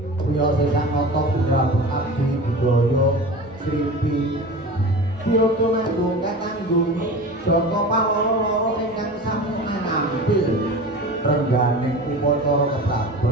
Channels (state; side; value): normal; both; correlation 0.34